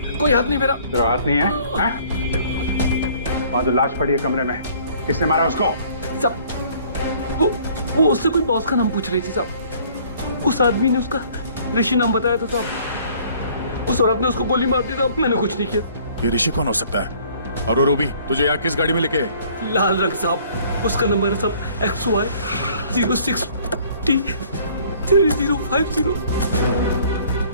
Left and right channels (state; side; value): inverted; both; correlation -0.56